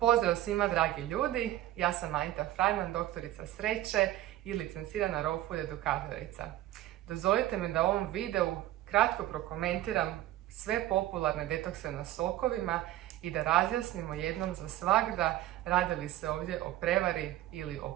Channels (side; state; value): left; quieter; 14.5 dB